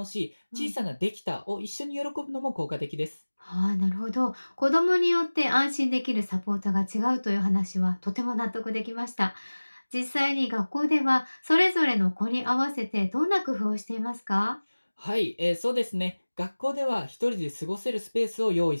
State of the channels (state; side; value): inverted; both; correlation -1.00